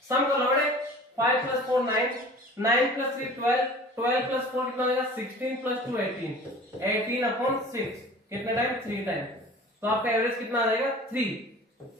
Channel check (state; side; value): normal; both; correlation 0.43